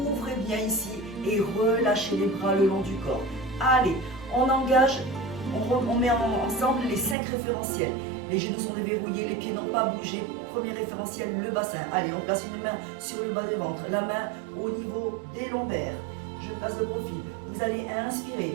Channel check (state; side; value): drops out; left; at 7.2 s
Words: bien ici et relâchez les bras le long du corps. Allez, on engage, on met ensemble les 5 référentiels. Les genoux sont déverrouillés, les pieds n'ont pas bougé. Premier référentiel, le bassin. Allez, on place une main sur le bas du ventre, la main au niveau des lombaires. Je place de profil. Vous allez